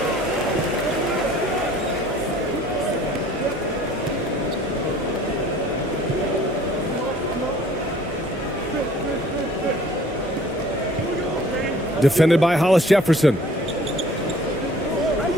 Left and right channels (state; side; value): normal; both; correlation 0.52